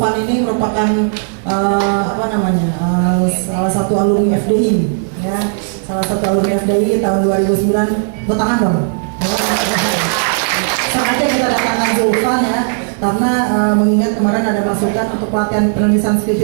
ini merupakan salah satu alumni FDI ya, salah satu alumni FDI tahun 2009. Bertangan dong sengaja kita datangkan Zulfan ya, karena mengingat kemarin ada masukan untuk pelatihan penulisan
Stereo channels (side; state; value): left; silent; 70 dB below the other